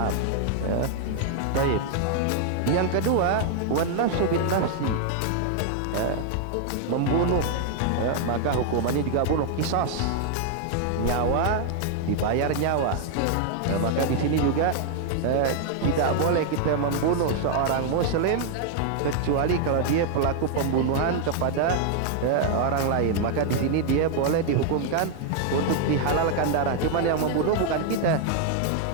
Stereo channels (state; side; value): different; both; correlation 0.00